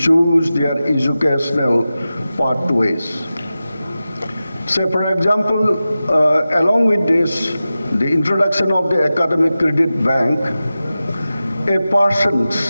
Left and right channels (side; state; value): both; inverted; correlation -0.94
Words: their educational pathways. So for example, along with this, the introduction of the Academic Credit Bank, a person,